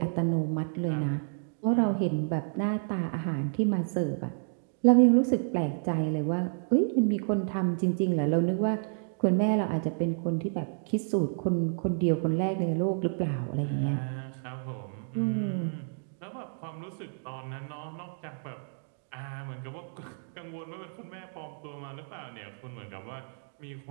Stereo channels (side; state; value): left; silent; digital silence